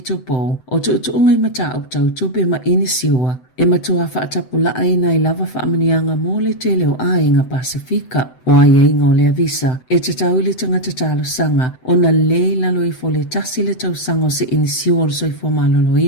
o tu ungai mata au tau tupe ma inisiua e matua whaatapula aina I lava whaamanianga mō le te leo ainga Pasifika. O ai ainga o le avisa, e te tau le tangata talo sanga, o na le lalo I fo le tasi le tau sanga o se inisiu o le soifo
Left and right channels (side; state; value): right; late; 7.9 ms